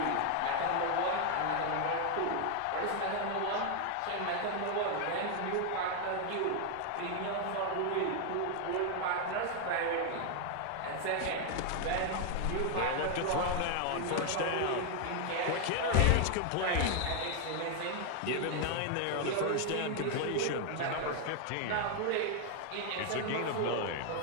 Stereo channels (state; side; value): different; both; correlation 0.00